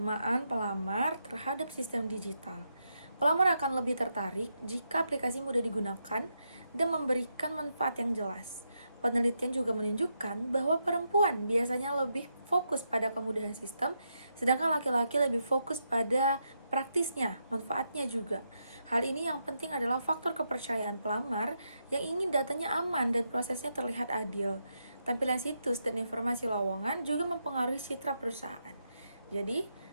pelamar terhadap sistem digital. Pelamar akan lebih tertarik jika aplikasi mudah digunakan dan memberikan manfaat yang jelas. Penelitian juga menunjukkan bahwa perempuan biasanya lebih fokus pada kemudahan sistem, sedangkan laki-laki lebih fokus pada praktisnya, manfaatnya juga. Hal ini yang penting adalah faktor kepercayaan pelamar yang ingin datanya aman dan prosesnya terlihat adil. Tampilan situs dan informasi lowongan juga mempengaruhi citra perusahaan. Jadi,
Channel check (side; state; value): both; inverted; correlation -0.83